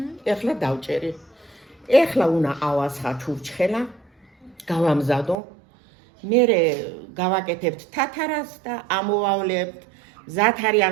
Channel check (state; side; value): drops out; left; at 5.4 s